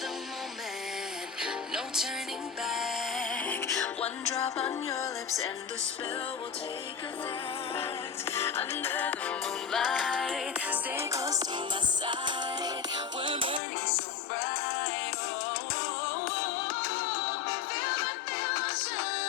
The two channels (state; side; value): drops out; right; at 13.6 s